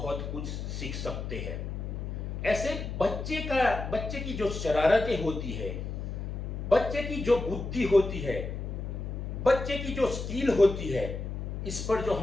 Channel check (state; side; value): noise; left; hum, 5 dB below the sound